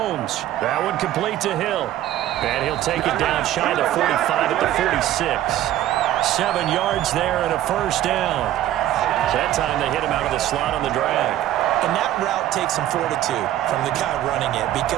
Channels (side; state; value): left; quieter; 13.1 dB